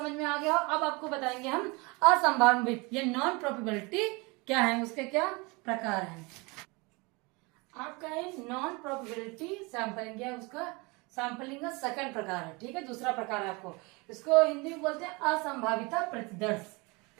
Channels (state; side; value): quieter; left; 26.9 dB